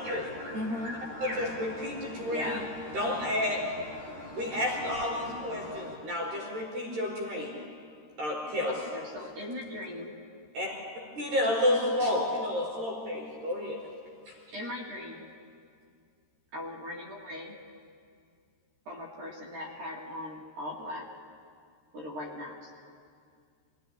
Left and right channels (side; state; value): left; late; 13 ms